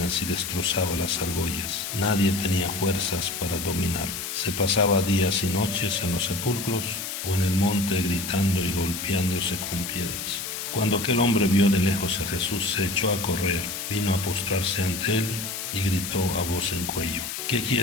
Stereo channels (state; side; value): noise; left; hiss, 6 dB below the sound